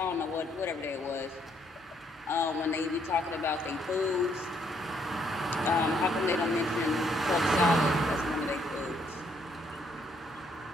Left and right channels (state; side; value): normal; both; correlation 0.70